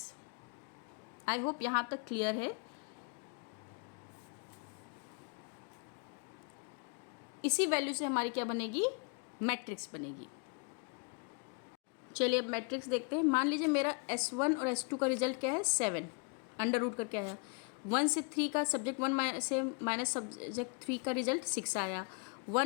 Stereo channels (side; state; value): right; quieter; 36.1 dB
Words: आई होप यहाँ तक क्लियर है। इसी वैल्यू से हमारी क्या बनेगी, मैट्रिक्स बनेगी। चलिए अब मैट्रिक्स देखते हैं। मान लीजिए मेरा S1 और S2 का रिजल्ट क्या है, 7। अंडर रूट करके आया। 1 से 3 का सब्जेक्ट 1 से माइनस सब्जेक्ट 3 का रिजल्ट 6 आया।